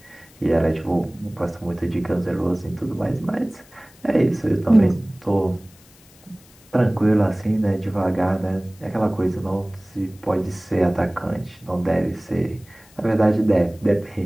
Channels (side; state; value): left; noise; hiss, 27 dB below the sound